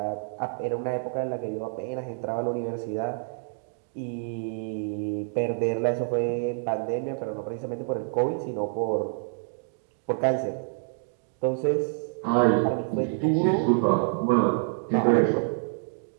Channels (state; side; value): silent; left; digital silence